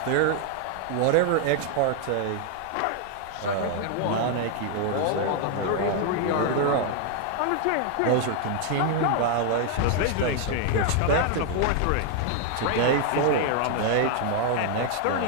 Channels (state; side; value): different; both; correlation 0.00